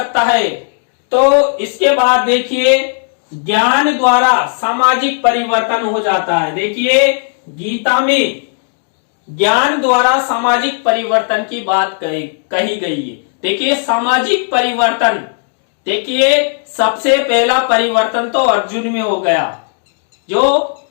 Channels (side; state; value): right; silent; digital silence